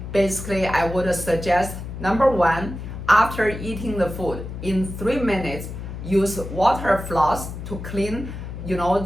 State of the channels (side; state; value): left; noise; hum, 9 dB below the sound